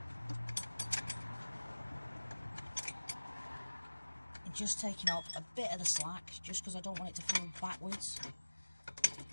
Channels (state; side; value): inverted; both; correlation -1.00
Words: And just taking up a bit of the slack, just because I don't want it to fall backwards.